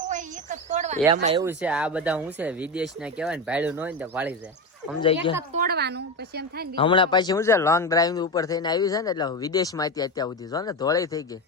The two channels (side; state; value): both; normal; correlation 0.18